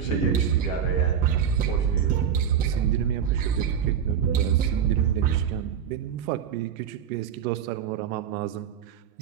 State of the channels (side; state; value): left; quieter; 8.4 dB